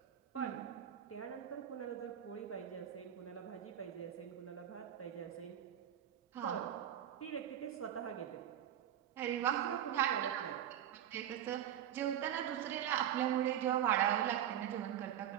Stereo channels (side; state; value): left; quieter; 10.6 dB